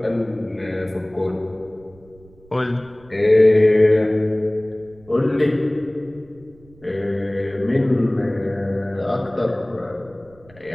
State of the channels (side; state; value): right; noise; rumble, 26 dB below the sound